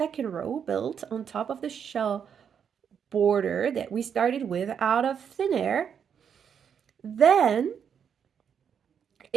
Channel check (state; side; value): quieter; left; 7.6 dB